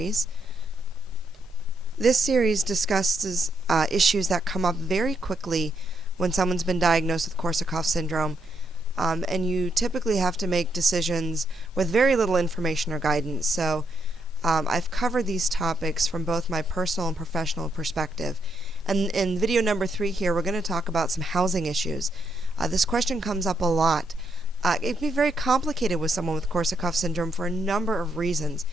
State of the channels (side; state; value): both; normal; correlation 0.77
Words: This series discusses issues that come up very quickly when someone's been diagnosed with Korsakoff syndrome, and you typically have to make decisions with very little information or guidance. So I've covered these topics from both my personal and professional perspective. And in video number 3 here, we're going to talk about some housing issues. This question comes up a lot. It can be very complicated with someone with Korsakoff syndrome for a number of reasons,